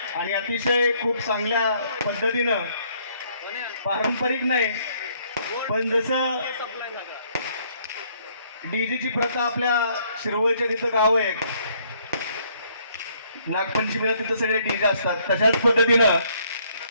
आणि अतिशय खूप चांगल्या पद्धतीनं, पारंपरिक नाही पण जसं डीजेची प्रथा आपल्या शिरवळच्या तिथं गाव आहे, नागपंचमीला तिथं सगळे डीजे असतात, तशाच पद्धतीनं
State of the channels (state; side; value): inverted; both; correlation -0.66